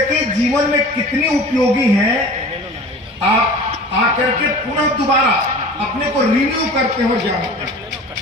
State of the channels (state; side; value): normal; both; correlation 0.40